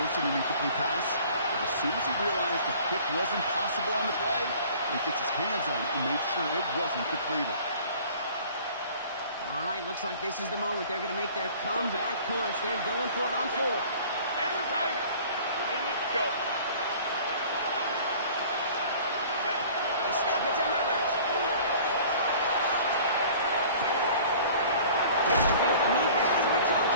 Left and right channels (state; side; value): inverted; both; correlation -0.48